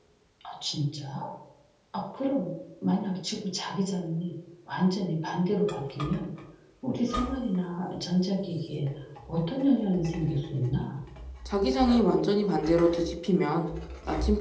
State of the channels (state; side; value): identical; both; correlation 1.00